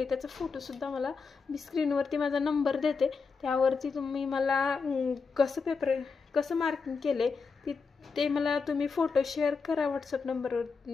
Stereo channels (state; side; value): quieter; right; 5.0 dB